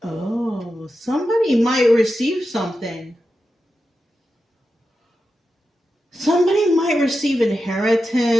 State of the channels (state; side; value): normal; both; correlation 0.90